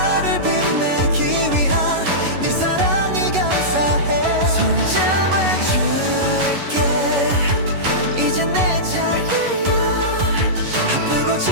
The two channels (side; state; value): left; late; 11 ms